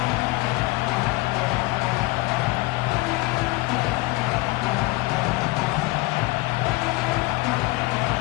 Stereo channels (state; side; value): quieter; right; 22.1 dB